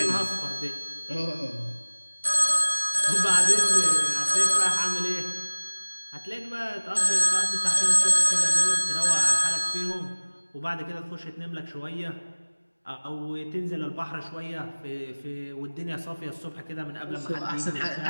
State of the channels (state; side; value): inverted; both; correlation -1.00